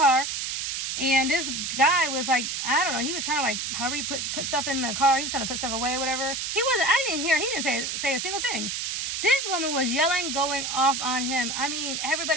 And this guy was like, I don't know, he was trying to like, however you put stuff in the car. He was trying to put stuff away or whatever. He didn't say a single thing. This woman was yelling, going off on him. I mean,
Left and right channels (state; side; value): noise; right; hiss, 2 dB below the sound